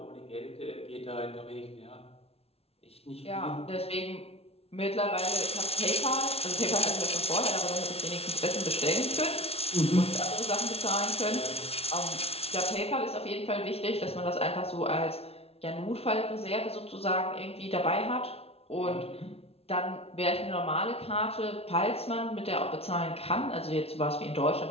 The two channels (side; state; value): right; late; 0.29 ms